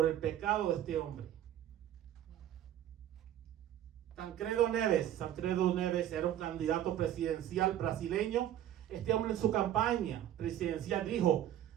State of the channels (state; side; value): quieter; left; 11.6 dB